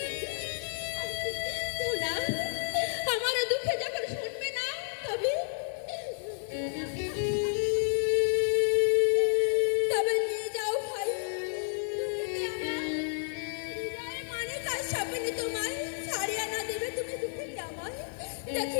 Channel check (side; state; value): right; silent; 57 dB below the other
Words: ধুনা, আমার দুঃখে যখন শুনবে না তবে তবে নিয়ে যাও ভাই। দুঃখীকে আমার হৃদয়ের মানে তার সামনে তোমায় ছাড়িয়ে না দেবে তুমি দুঃখীকে আমায়।